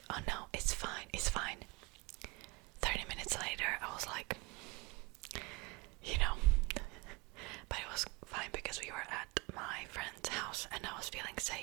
oh no, it's fine, it's fine. 30 minutes later I was like, you know, but it was fine because we were at my friend's house and I was feeling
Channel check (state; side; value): quieter; left; 24.0 dB